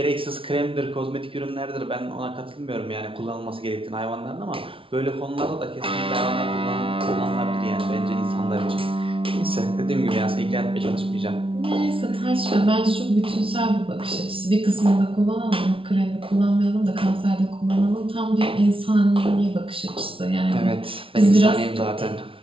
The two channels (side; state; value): left; late; 0.26 ms